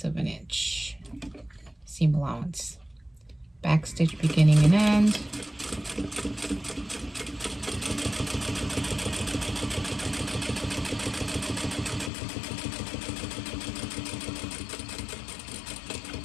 of an inch seam allowance. Back stitch beginning and end.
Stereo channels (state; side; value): drops out; right; at 12.1 s